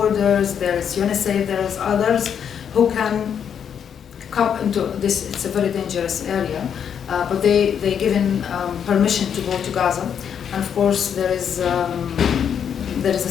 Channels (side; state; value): right; quieter; 8.0 dB